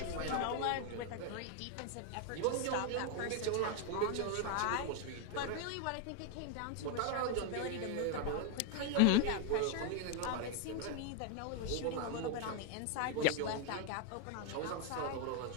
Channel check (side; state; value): both; different; correlation 0.01